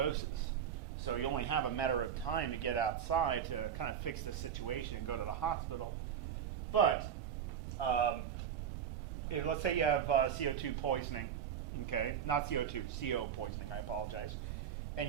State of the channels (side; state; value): left; quieter; 8.6 dB